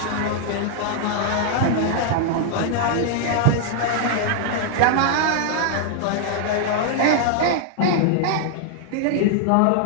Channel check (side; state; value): both; different; correlation 0.00